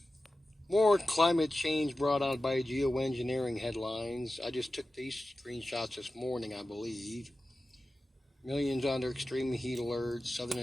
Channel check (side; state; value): both; normal; correlation 0.94